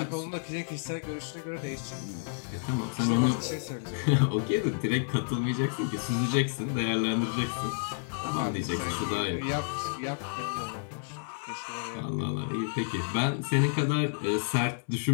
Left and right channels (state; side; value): silent; right; digital silence